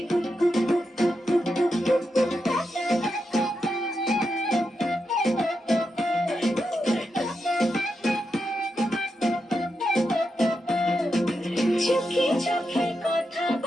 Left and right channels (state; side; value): normal; both; correlation 0.86